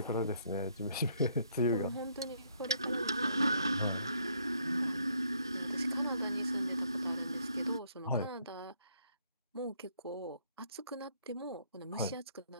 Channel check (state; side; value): inverted; both; correlation -0.68